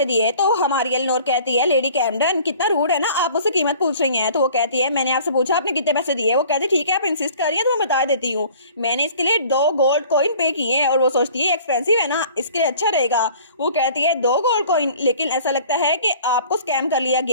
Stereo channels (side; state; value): both; inverted; correlation -0.49